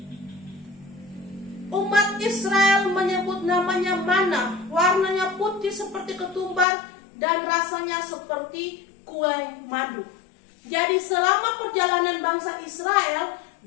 umat Israel menyebut namanya mana, warnanya putih seperti ketumbar dan rasanya seperti kue madu. Jadi selama perjalanan bangsa Israel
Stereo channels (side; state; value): right; drops out; at 6.7 s